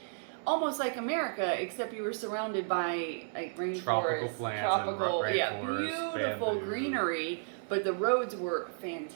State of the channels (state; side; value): silent; left; digital silence